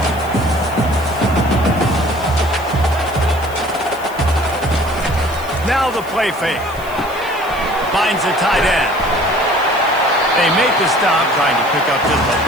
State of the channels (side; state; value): left; noise; hiss, 20 dB below the sound